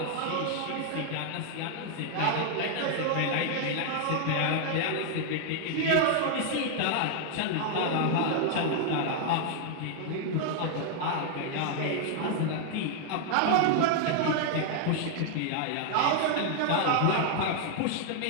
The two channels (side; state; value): both; different; correlation 0.00